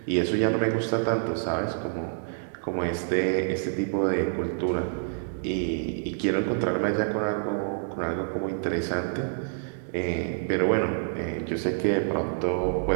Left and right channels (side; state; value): left; silent; digital silence